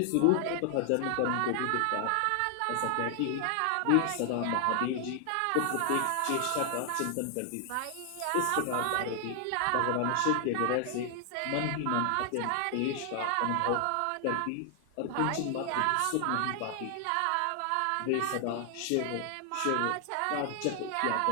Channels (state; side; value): different; both; correlation 0.00